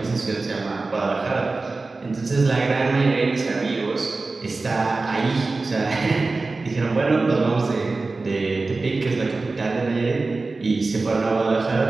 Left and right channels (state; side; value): quieter; left; 3.6 dB